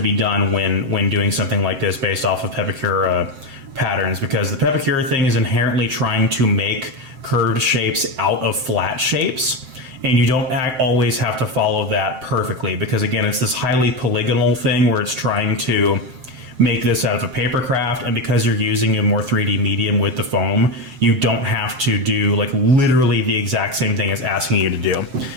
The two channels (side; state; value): left; late; 7.7 ms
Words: done when doing something like this based off of Pepakura patterns, because the Pepakura thing is inherently trying to make curved shapes out of flat shapes, and you don't always have to follow that perfectly, because again, it's this highly polygonal thing where it's trying to make this out of a paper craft, and because you're using a more 3D medium with the foam, you don't have to do like literally the exact same thing it's asking you to do.